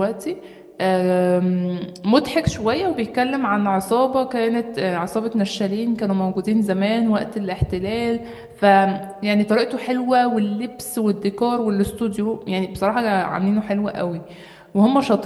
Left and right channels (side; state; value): both; identical; correlation 1.00